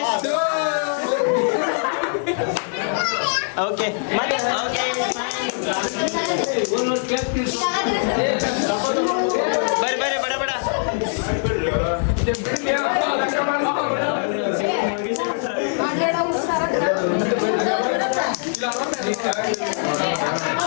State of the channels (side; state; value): right; silent; digital silence